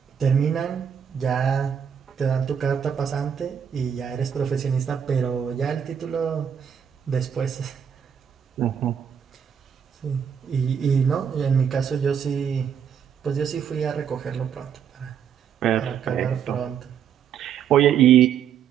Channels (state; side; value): quieter; left; 8.0 dB